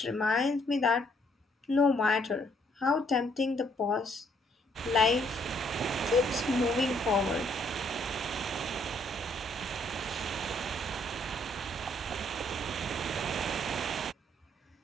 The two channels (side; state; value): both; normal; correlation 0.68